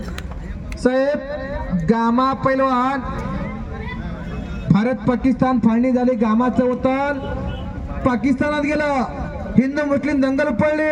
साहेब, गामा पैलवान भारत पाकिस्तान फाळणी झाली. गामाचं वतन पाकिस्तानात गेलं. हिंदू मुस्लिम दंगल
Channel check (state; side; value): identical; both; correlation 1.00